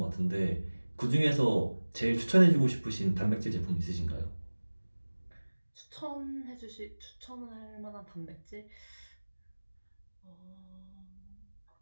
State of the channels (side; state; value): both; inverted; correlation -1.00